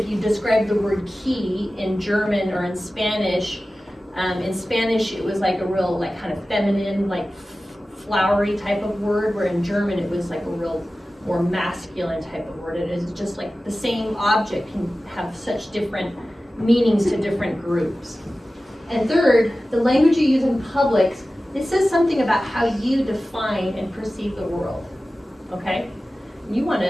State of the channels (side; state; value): both; normal; correlation 0.95